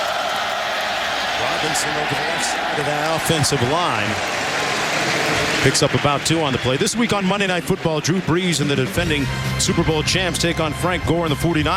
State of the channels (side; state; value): both; identical; correlation 1.00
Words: Robinson over the left side of that offensive line. Picks up about 2 on the play. This week on Monday Night Football, Drew Brees and the defending Super Bowl champs take on Frank Gore and the